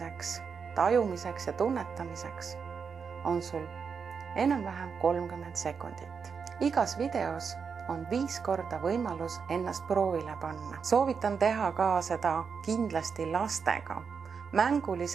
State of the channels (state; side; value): quieter; left; 6.0 dB